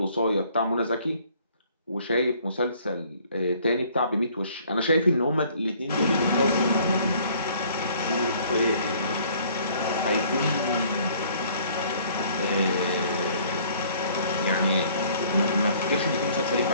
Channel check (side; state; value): both; inverted; correlation -0.58